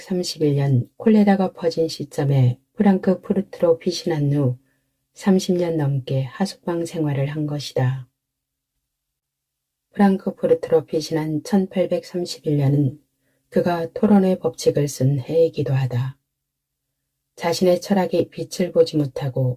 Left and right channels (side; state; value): both; identical; correlation 1.00